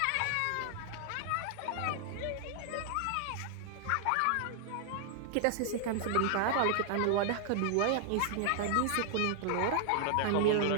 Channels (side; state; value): both; different; correlation 0.00